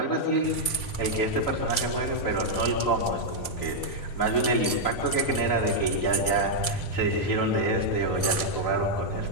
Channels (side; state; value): right; late; 3.8 ms